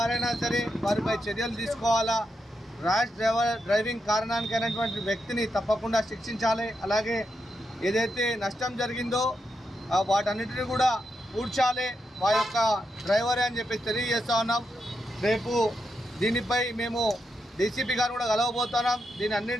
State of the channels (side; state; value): both; normal; correlation 0.84